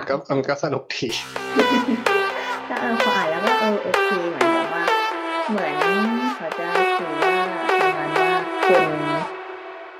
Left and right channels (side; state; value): both; identical; correlation 1.00